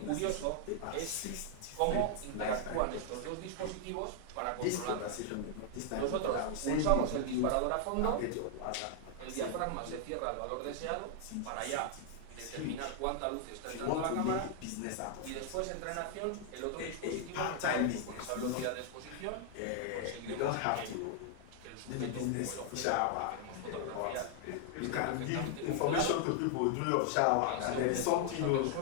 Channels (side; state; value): both; different; correlation 0.00